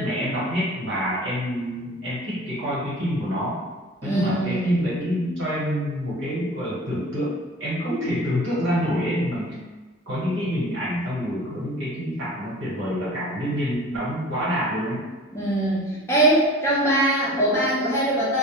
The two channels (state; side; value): normal; both; correlation 0.40